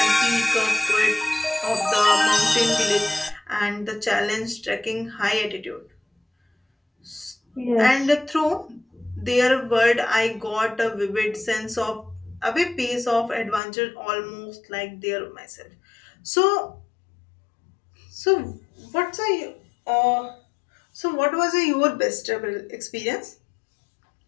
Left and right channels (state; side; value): drops out; right; at 13.6 s